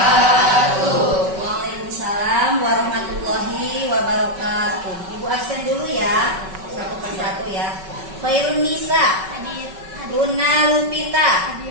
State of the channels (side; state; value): left; late; 5.3 ms